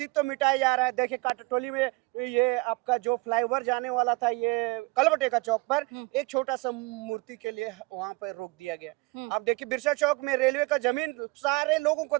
मिटाया जा रहा है। देखिए काटाटोली में ये आपका जो फ्लाईओवर जाने वाला था, ये कलबटे का चौक पर एक छोटा सा मूर्ति के लिए वहां पर रोक दिया गया। अब देखिए बिरसा चौक में रेलवे का जमीन सारे लोगों को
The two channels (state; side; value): quieter; left; 24.6 dB